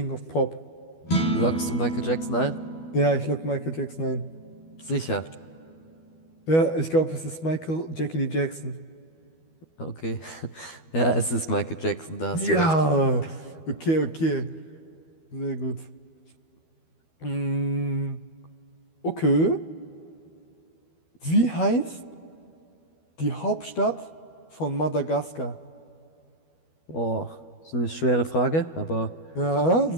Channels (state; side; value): late; right; 12 ms